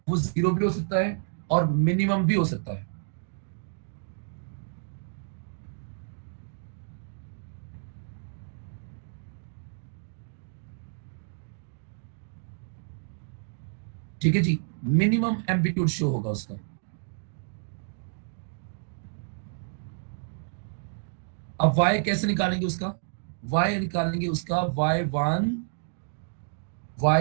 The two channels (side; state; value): left; silent; digital silence